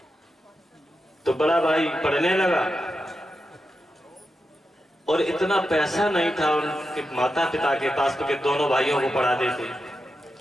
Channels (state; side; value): normal; both; correlation 0.88